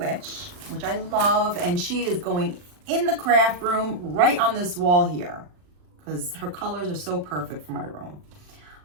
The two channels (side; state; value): left; late; 40 ms